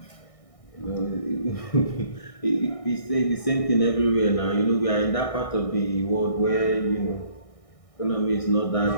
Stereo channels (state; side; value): late; right; 1.6 ms